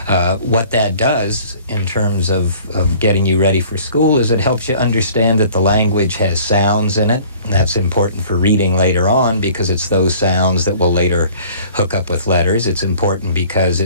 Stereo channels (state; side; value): inverted; both; correlation -0.51